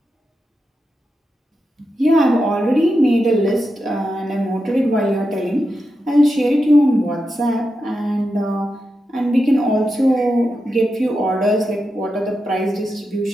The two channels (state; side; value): normal; both; correlation 0.88